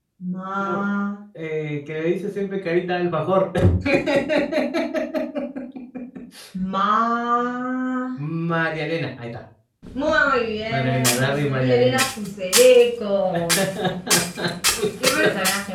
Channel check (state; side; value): identical; both; correlation 1.00